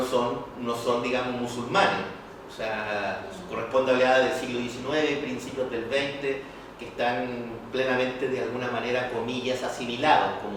son digamos, musulmanes. O sea, corresponde a oleadas del siglo XIX, principios del XX, que están plenamente, de alguna manera, comillas, asimilados,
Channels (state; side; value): identical; both; correlation 1.00